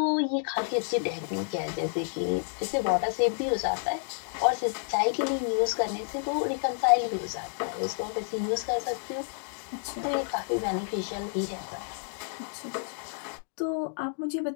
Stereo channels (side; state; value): right; silent; digital silence